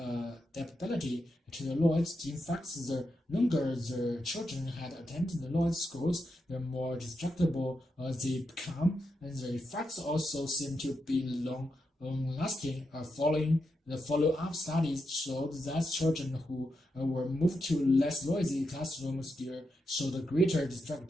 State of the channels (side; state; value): both; normal; correlation 0.85